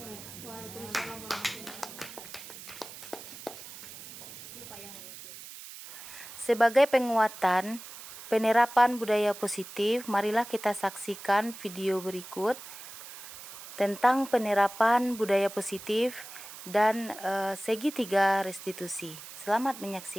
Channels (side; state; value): right; noise; hiss, 14 dB below the sound